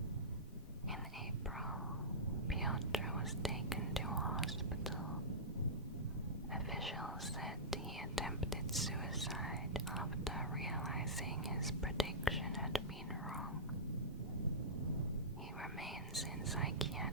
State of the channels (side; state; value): both; normal; correlation -0.18